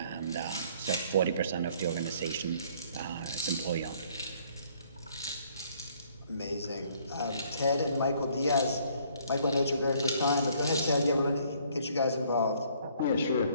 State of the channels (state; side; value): inverted; both; correlation -0.62